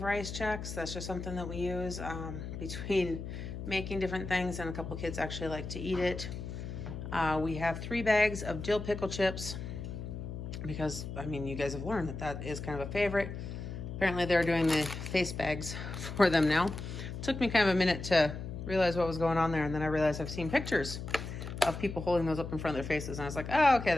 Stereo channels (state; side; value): noise; left; hum, 7 dB below the sound